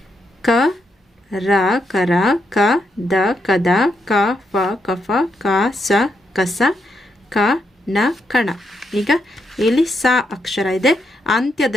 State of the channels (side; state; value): both; normal; correlation 0.80